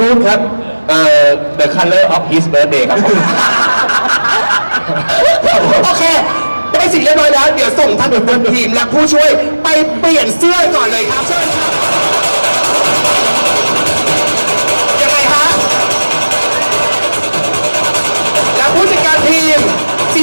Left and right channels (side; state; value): both; inverted; correlation -1.00